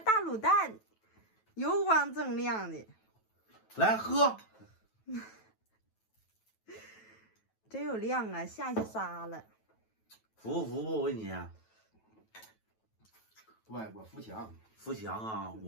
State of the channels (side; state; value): right; late; 9.2 ms